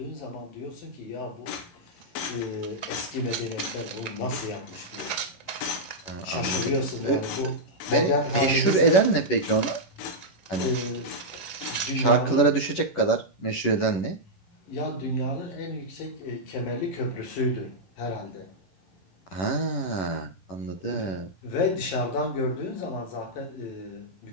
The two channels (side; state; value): right; late; 11 ms